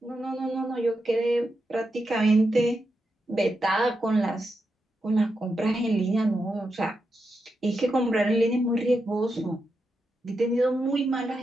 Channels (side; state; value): both; normal; correlation 0.86